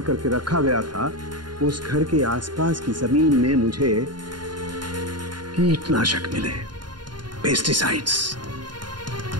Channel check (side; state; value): left; late; 0.71 ms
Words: करके रखा गया था, उस घर के आसपास की जमीन में मुझे कीटनाशक मिले, पेस्टिसाइड्स।